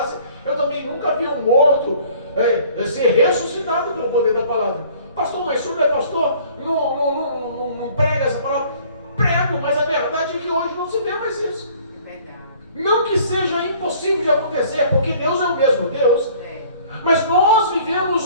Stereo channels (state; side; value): inverted; both; correlation -0.54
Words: eu também nunca vi um morto ser ressuscitado pelo poder da palavra. Pastor, mas o senhor não é pastor? Não prega essa palavra? Prego, mas a verdade é que hoje não se vê mais isso. Não que seja impossível de acontecer, porque Deus é o mesmo Deus. Mas nós